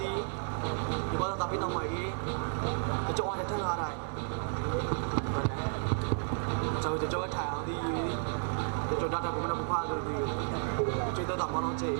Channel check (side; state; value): left; silent; 56 dB below the other